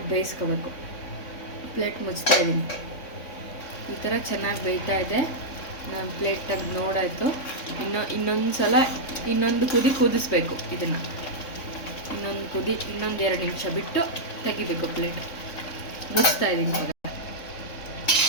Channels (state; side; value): late; right; 3.5 ms